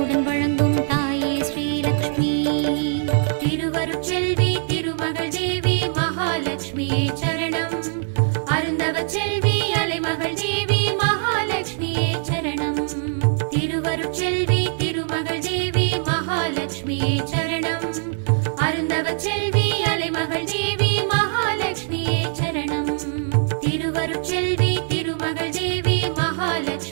வழங்கும் தாயே ஸ்ரீலக்ஷ்மி. திருவருட்செல்வி திருமகள் தேவி மகாலட்சுமியே சரணம். அருந்தவ செல்வி அலைமகள் தேவி மகாலட்சுமியே சரணம். திருவருட்செல்வி திருமகள் தேவி மகாலட்சுமியே சரணம். அருந்தவ செல்வி அலைமகள் தேவி மகாலட்சுமியே சரணம். திருவருட்செல்வி திருமகள் தேவி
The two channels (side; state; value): left; silent; digital silence